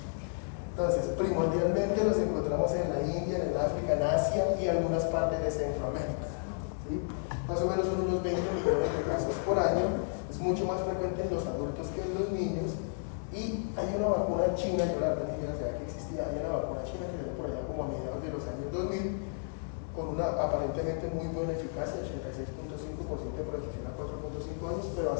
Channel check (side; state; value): right; silent; digital silence